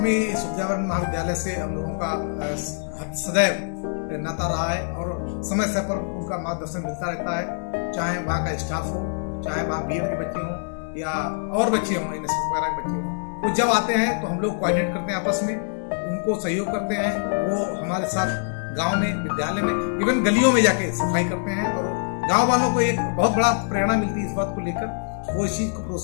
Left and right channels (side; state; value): right; silent; 62 dB below the other